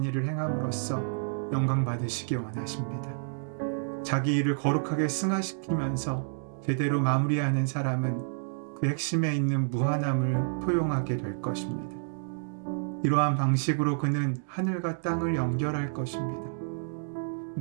일을 행함으로써 영광 받으시기 원하십니다. 자기 일을 거룩하게 승화시키면서 제대로 마무리하는 사람은 그 핵심에 있는 무한함을 포용하게 될 것입니다. 이러한 방식으로 그는 하늘과 땅을 연결할 것입니다.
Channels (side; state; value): left; silent; digital silence